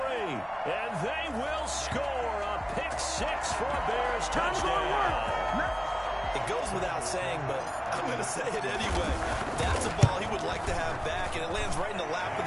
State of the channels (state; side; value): identical; both; correlation 1.00